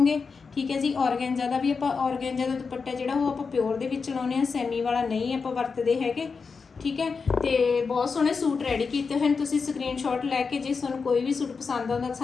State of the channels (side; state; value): right; quieter; 5.1 dB